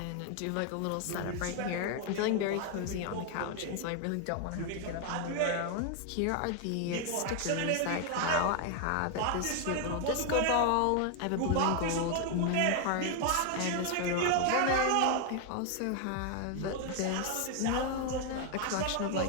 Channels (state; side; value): different; both; correlation 0.00